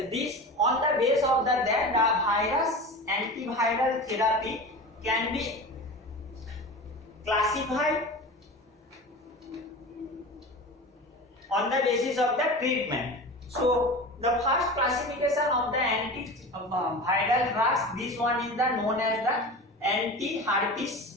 this on the base of that the virus antiviral therapy can be classified on the basis of the treatment. So the first classification of the antiviral drugs, this one is known as the anti-herpes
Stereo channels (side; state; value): both; normal; correlation 0.31